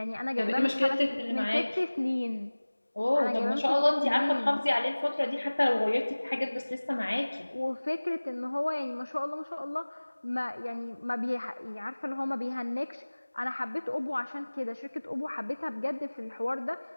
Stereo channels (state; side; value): inverted; both; correlation -1.00